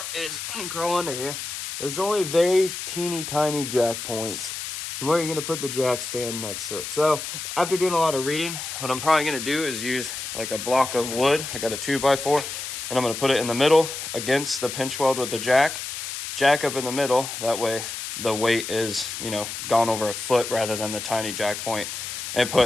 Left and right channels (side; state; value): left; noise; hiss, 6 dB below the sound